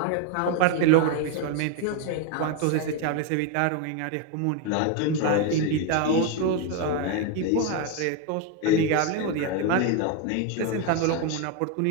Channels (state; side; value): different; both; correlation 0.01